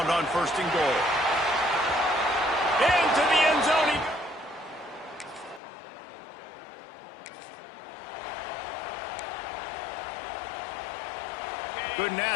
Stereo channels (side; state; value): right; drops out; at 5.6 s